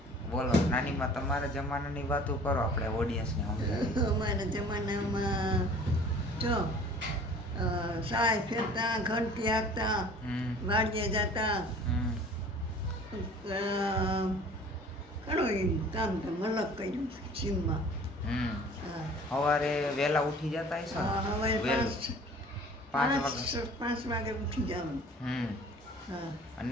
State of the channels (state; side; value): normal; both; correlation 0.48